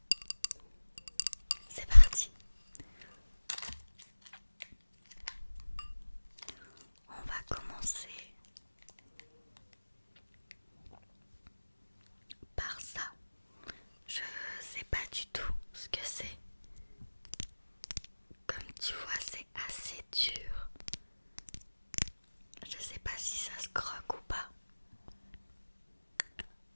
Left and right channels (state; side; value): inverted; both; correlation -1.00